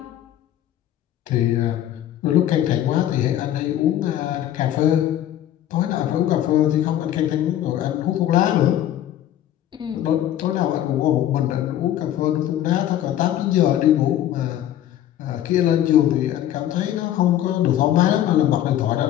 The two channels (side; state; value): right; quieter; 11.9 dB